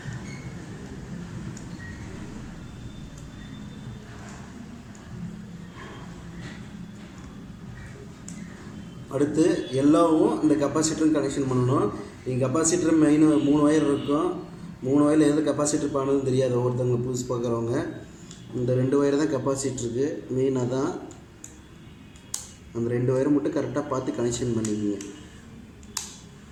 அடுத்து எல்லோவும் இந்த கெப்பாசிட்டரும் கனெக்ஷன் பண்ணணும். இங்கே கெப்பாசிட்டர் மெயின் 3 ஒயர் இருக்கும். 3 ஒயரில் எது கெப்பாசிட்டர் பண்ணணும்னு தெரியாது ஒவ்வொருத்தவங்க புதுசு பார்க்குறவங்க. இந்த 2 ஒயர் தான் கெப்பாசிட்டருக்கு மெயினாக தான். அந்த 2 ஒயரை மட்டும் கரெக்டாக பார்த்து கனெக்ஷன் பண்ணிக்கோங்க.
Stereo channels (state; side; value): identical; both; correlation 1.00